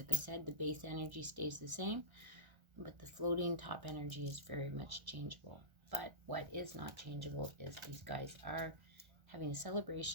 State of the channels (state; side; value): late; left; 1.3 ms